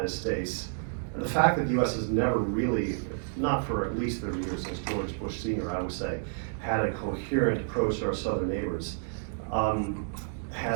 States. And the fact that the U.S. has never really, not for at least 30 years since George Bush Sr., I would say, had a coherent approach to our southern neighbors,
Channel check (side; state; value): left; silent; digital silence